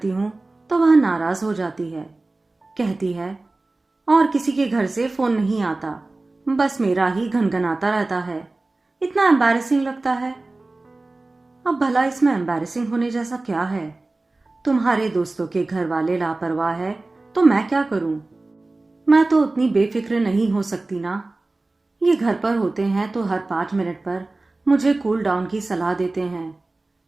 हूँ तो वह नाराज हो जाती है। कहती है और किसी के घर से फोन नहीं आता, बस मेरा ही घनघनाता रहता है। इतना एम्बैरेसिंग लगता है। अब भला इसमें एम्बैरेसिंग होने जैसा क्या है? तुम्हारे दोस्तों के घर वाले लापरवाह है तो मैं क्या करूं? मैं तो उतनी बेफिक्र नहीं हो सकती ना। ये घर पर होते हैं तो हर 5 मिनट पर मुझे कूल डाउन की सलाह देते हैं,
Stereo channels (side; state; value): left; quieter; 3.1 dB